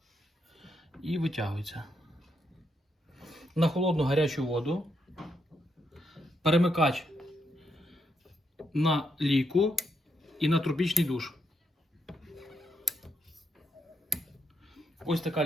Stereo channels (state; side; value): normal; both; correlation 0.78